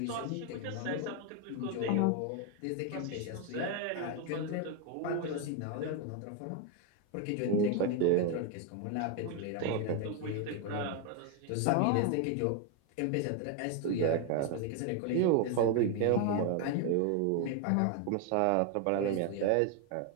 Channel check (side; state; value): both; different; correlation 0.01